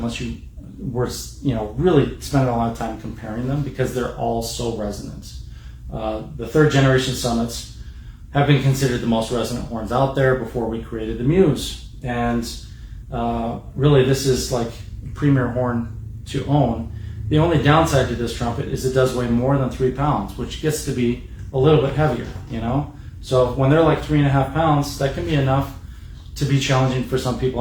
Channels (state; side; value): identical; both; correlation 1.00